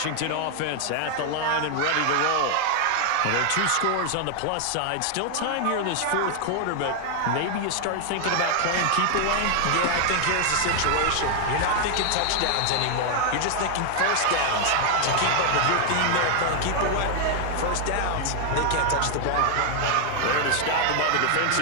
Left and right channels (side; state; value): both; different; correlation 0.00